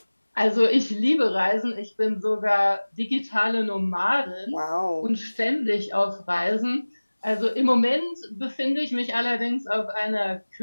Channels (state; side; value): inverted; both; correlation -1.00